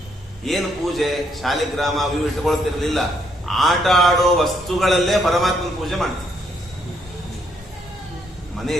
ಏನು ಪೂಜೆ? ಶಾಲಿಗ್ರಾಮ ಅವು ಇಟ್ಕೊಳ್ತಿರ್ಲಿಲ್ಲ, ಆಟ ಆಡೋ ವಸ್ತುಗಳಲ್ಲೇ ಪರಮಾತ್ಮನ ಪೂಜೆ ಮಾಡ್ತೀವಿ.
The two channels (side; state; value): both; normal; correlation 0.73